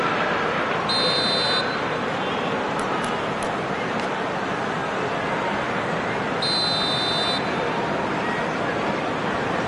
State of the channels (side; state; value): both; identical; correlation 1.00